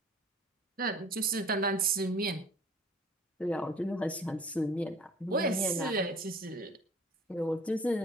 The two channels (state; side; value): normal; both; correlation 0.48